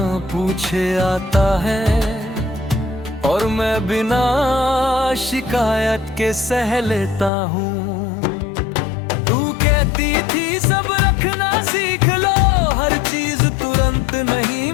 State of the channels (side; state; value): right; drops out; at 7.3 s